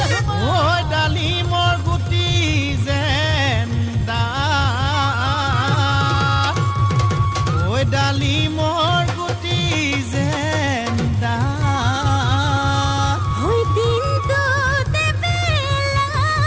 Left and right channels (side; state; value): both; identical; correlation 1.00